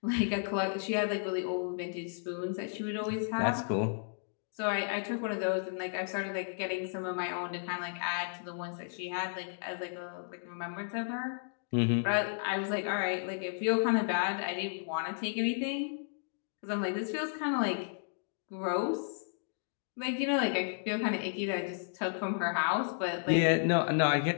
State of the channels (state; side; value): silent; right; digital silence